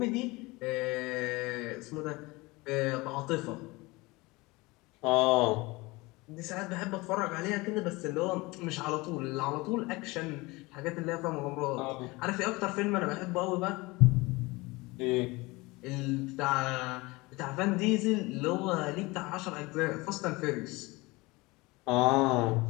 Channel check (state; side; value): quieter; right; 23.1 dB